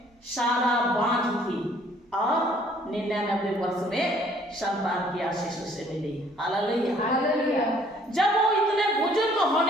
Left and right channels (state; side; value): normal; both; correlation 0.60